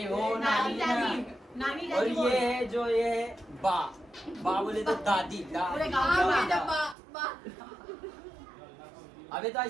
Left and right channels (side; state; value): left; drops out; at 7.0 s